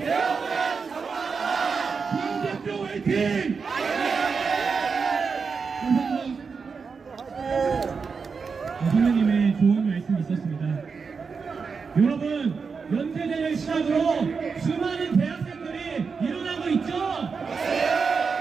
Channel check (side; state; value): left; quieter; 5.3 dB